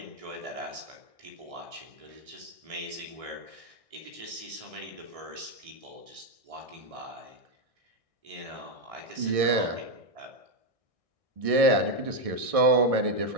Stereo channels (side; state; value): left; late; 1.6 ms